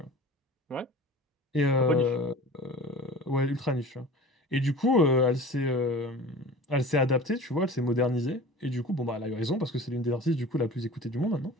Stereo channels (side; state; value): both; normal; correlation 0.40